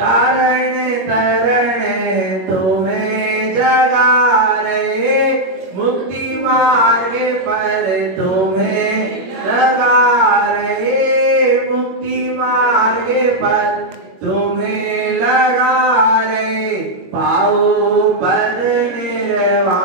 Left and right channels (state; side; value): late; left; 21 ms